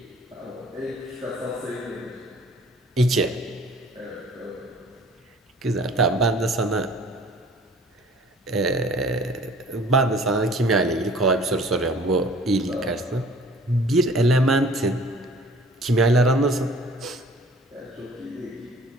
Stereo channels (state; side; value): normal; both; correlation 0.50